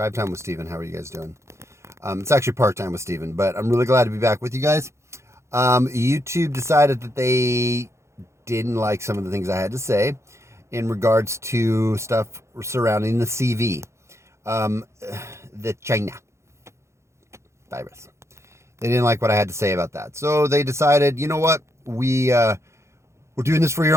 Time with Steven. How are you guys doing? It's actually Part Time with Steven, but I'm really glad to be back with you guys. YouTube decided that they didn't like some of the things I had to say in regards to stuff surrounding the CV, the China virus. They didn't like what I had to say about that. So they decided, you know what? We're doing this for your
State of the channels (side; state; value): left; late; 0.14 ms